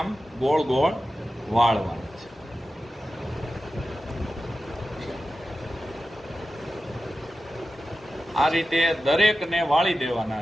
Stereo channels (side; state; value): both; normal; correlation 0.93